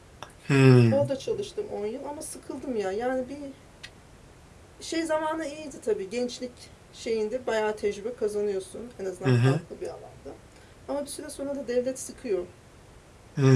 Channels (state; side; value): identical; both; correlation 1.00